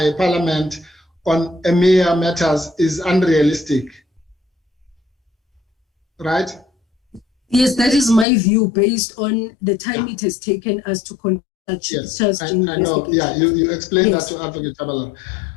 Parliament on EMEA matters is unrealistic, right? Yes, that is my view based on the time it has taken us to conduct yes, I know. Yeah, you explained that to Advocate Chabalala.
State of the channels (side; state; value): right; drops out; at 8.2 s